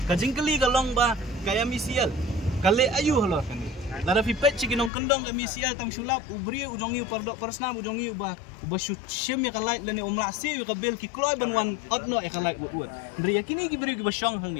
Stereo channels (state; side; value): drops out; right; at 4.9 s